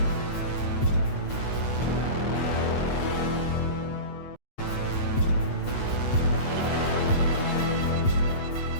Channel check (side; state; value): right; late; 8.3 ms